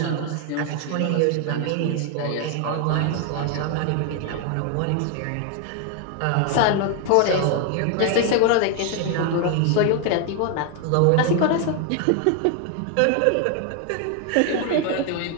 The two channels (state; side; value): different; both; correlation 0.00